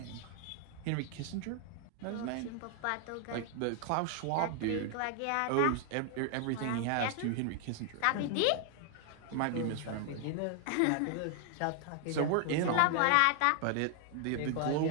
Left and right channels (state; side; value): different; both; correlation 0.00